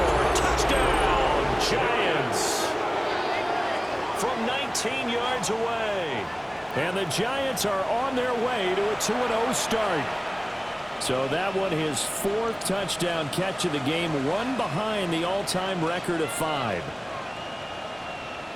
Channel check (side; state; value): both; identical; correlation 1.00